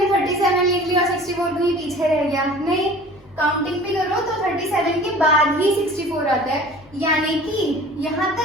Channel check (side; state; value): both; normal; correlation 0.44